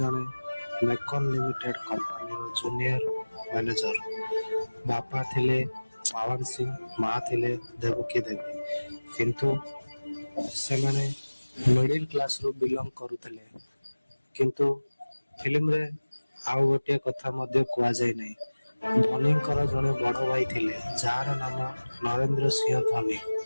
मेकन लिमिटेड कंपनी रो जूनियर मैनेजर। बापा थिले पवन सिंह, माँ थिले देवकी देवी। किंतु से माने मिडिल क्लास रो बिलोंग करुथिले। किंतु फिल्म रे आउ गोटे कथा मध्य कुआ जाय नै। धोनीकर जने बड़ भाई थिले जार नाम नरेंद्र सिंह धोनी।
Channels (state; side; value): inverted; both; correlation -1.00